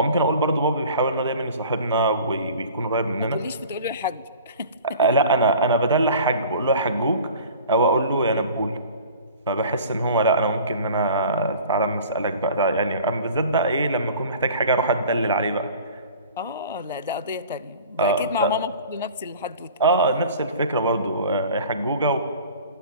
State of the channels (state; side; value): inverted; both; correlation -0.45